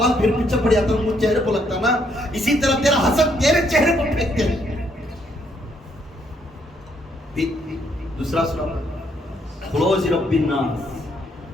پھر پیچھے پڑ جاتا ہے، چہرے کو لگتا نا، اسی طرح تیرا حسد تیرے چہرے کو پھینکتے ہیں. دوسرا سورہ خلوص رب الناس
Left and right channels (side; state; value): both; normal; correlation 0.71